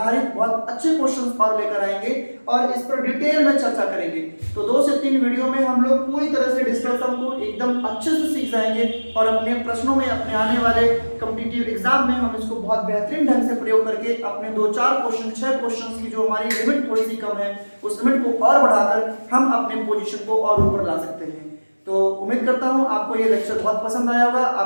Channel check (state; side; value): inverted; both; correlation -1.00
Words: बहुत अच्छे क्वेश्चंस और लेकर आएंगे और इस पर डिटेल में चर्चा करेंगे। तो 2 से 3 वीडियो में हम लोग पूरी तरह से डिजिटल सम को एकदम अच्छे से सीख जाएंगे और अपने प्रश्नों में, अपने आने वाले कॉम्पिटिटिव एग्जाम में हम इसको बहुत बेहतरीन ढंग से प्रयोग करके अपने 2-4 क्वेश्चन, 6 क्वेश्चन की जो हमारी लिमिट थोड़ी सी कम है उस लिमिट को और बढ़ाकर हम अपने पोजीशन को और ऊपर ला सकते हैं। तो उम्मीद करता हूं आपको ये लेक्चर बहुत पसंद आया होगा।